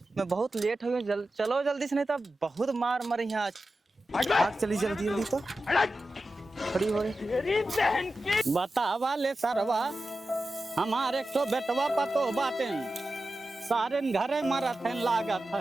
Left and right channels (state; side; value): normal; both; correlation 0.93